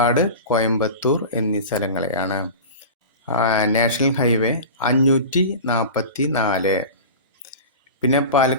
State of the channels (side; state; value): both; inverted; correlation -0.32